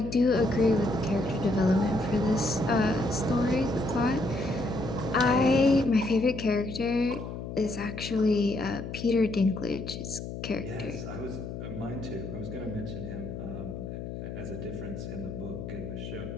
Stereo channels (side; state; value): left; noise; hum, 8 dB below the sound